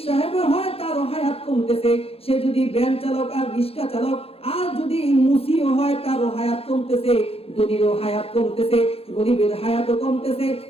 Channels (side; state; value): right; late; 0.28 ms